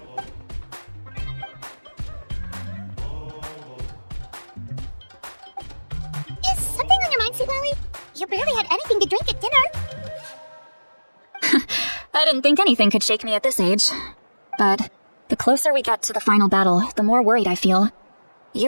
Lally? You barely had anything to drink at dinner. I didn't think anything could shake me at this age. But the closer we get to the final battle, the more worried I feel.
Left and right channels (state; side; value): inverted; both; correlation -1.00